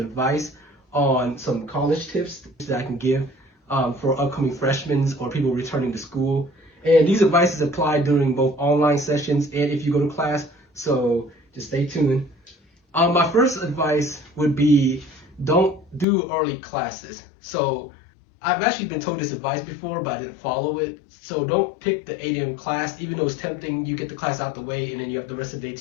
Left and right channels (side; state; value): right; drops out; at 16.1 s